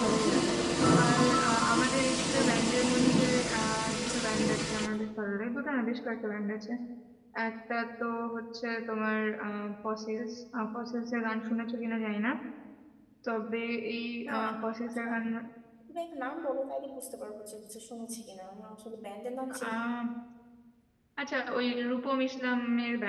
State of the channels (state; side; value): identical; both; correlation 1.00